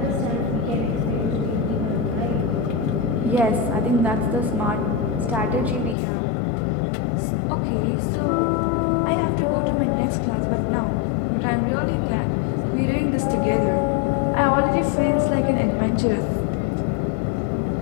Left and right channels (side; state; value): right; drops out; at 6.0 s